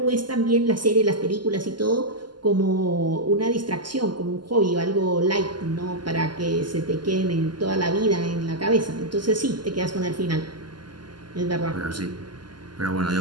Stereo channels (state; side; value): late; left; 0.71 ms